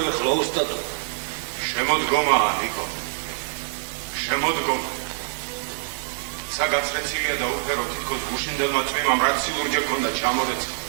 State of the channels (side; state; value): left; silent; digital silence